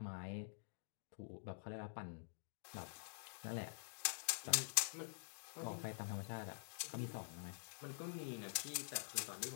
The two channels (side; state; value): right; silent; digital silence